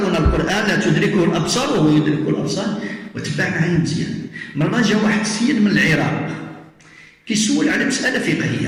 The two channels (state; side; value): identical; both; correlation 1.00